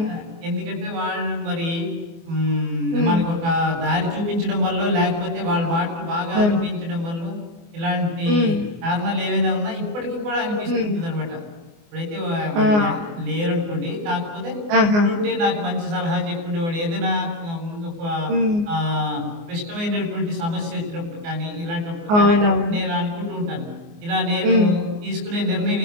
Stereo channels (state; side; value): late; left; 24 ms